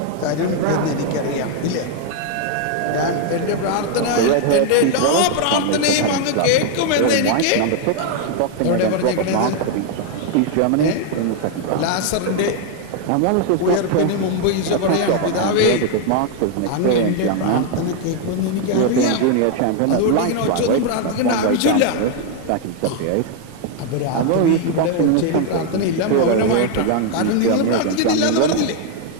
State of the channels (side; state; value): both; different; correlation 0.00